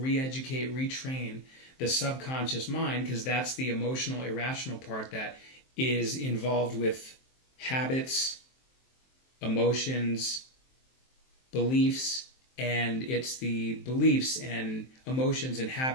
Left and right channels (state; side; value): late; right; 23 ms